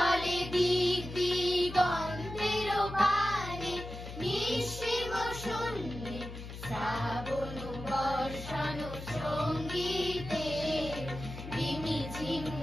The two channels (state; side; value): noise; left; hum, 11 dB below the sound